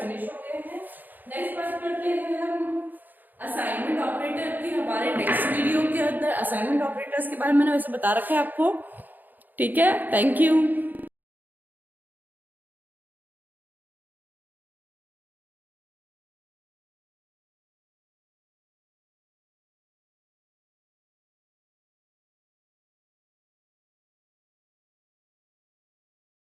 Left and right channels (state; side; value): late; left; 0.086 ms